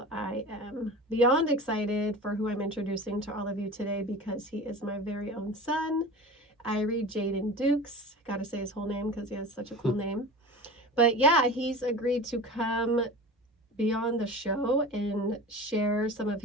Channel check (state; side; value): normal; both; correlation 0.34